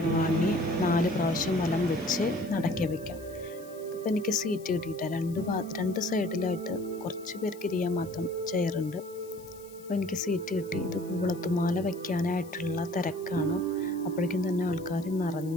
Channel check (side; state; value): left; noise; hiss, 22 dB below the sound